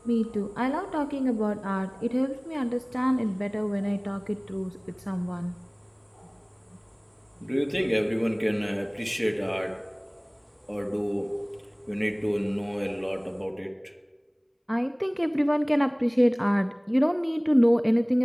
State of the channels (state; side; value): identical; both; correlation 1.00